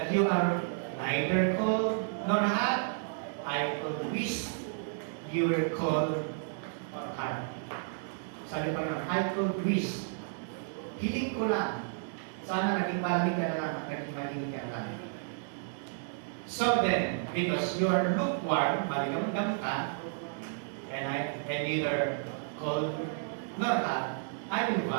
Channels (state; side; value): silent; left; digital silence